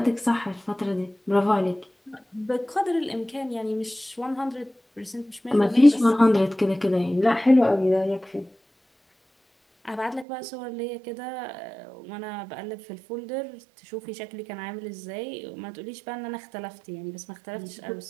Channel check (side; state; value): left; drops out; at 10.2 s